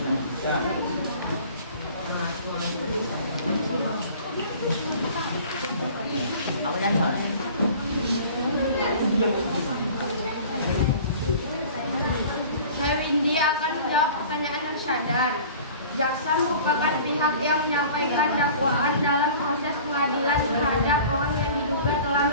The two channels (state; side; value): inverted; both; correlation -0.45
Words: Saya Windy akan menjawab pertanyaan Arsyadar. Jaksa merupakan pihak yang menyampaikan dakwaan dalam proses pengadilan terhadap orang yang diduga telah